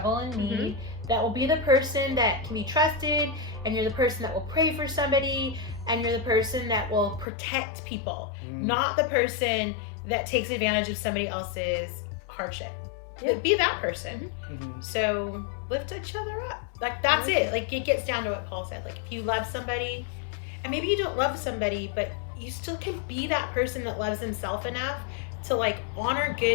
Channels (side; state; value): right; drops out; at 7.2 s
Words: and need. That will be the person that can be trusted, and you're the person that will pray for somebody, and you're the person that will protect people, not the person that takes advantage of somebody else's hardship. But be that person. So lift each other up. Like that's it. Like it gets down to what Paul said. Like if you love somebody, and maybe you don't love somebody, but you still can be that person that loves himself enough to like honor